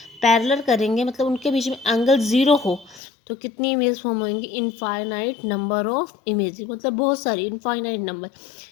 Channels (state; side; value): drops out; right; at 3.0 s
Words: पैरेलल करेंगे मतलब उनके बीच में एंगल 0 हो, तो कितनी इमेज फॉर्म होंगी, इनफाइनाइट नंबर ऑफ इमेज, मतलब बहुत सारी, इनफाइनाइट नंबर,